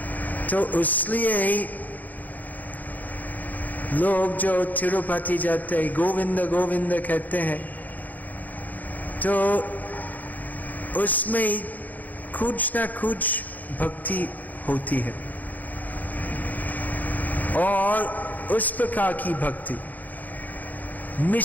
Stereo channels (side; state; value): right; late; 0.082 ms